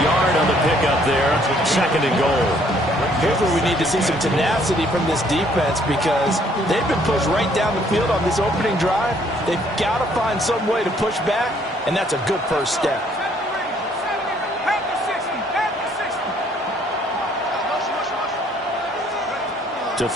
yard on the pickup there. 2nd and goal. Here's where we need to see some tenacity from this defense because they've been pushed right down the field on this opening drive. They've got to find some way to push back, and that's a good first step. To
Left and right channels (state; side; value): normal; both; correlation 0.64